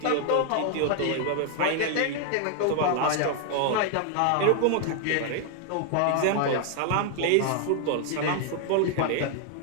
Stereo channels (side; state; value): both; different; correlation 0.00